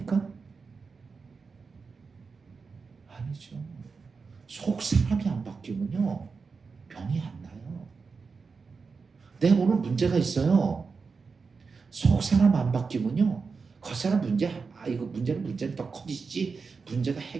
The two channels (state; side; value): quieter; left; 4.9 dB